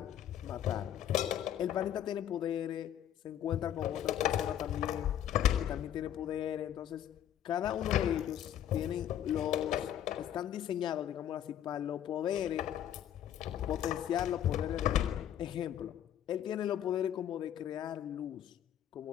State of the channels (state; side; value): quieter; right; 10.7 dB